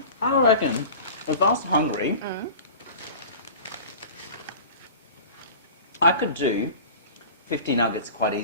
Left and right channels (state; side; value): inverted; both; correlation -0.38